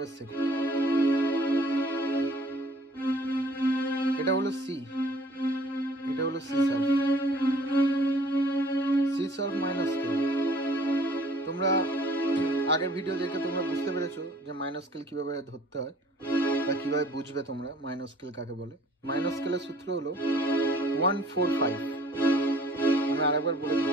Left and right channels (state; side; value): normal; both; correlation 0.55